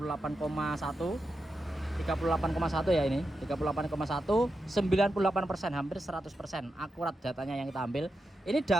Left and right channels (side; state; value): both; normal; correlation 0.88